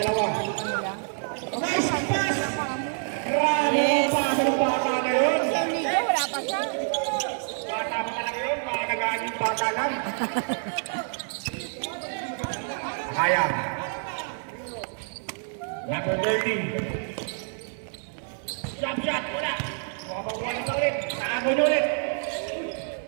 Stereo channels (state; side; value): silent; left; 60 dB below the other